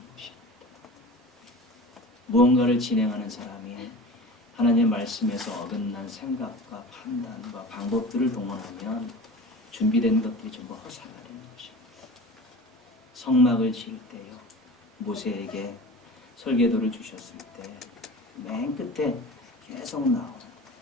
것입니다. 무언가를 진행하는 사람이 하나님의 말씀에서 어긋난 생각과 판단과 방법들을 동원하면 준비된 것들이 전부 허사가 되는 것입니다. 성막을 지을 때요. 모세에게 설계도를 주셨을 때 맨 끝에 계속 나오는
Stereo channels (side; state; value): both; normal; correlation 0.36